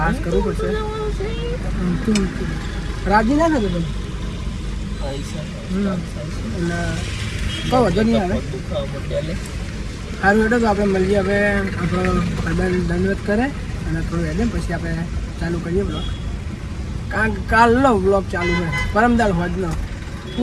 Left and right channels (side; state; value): both; identical; correlation 1.00